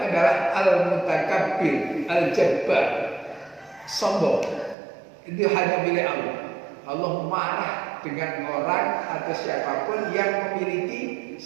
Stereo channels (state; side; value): drops out; left; at 4.8 s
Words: al-mutakabbir, al-jabbar, sombong. Itu hanya milik Allah. Allah marah dengan orang atau siapapun yang memiliki